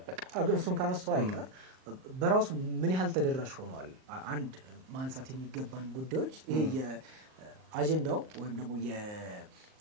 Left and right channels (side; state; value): left; late; 38 ms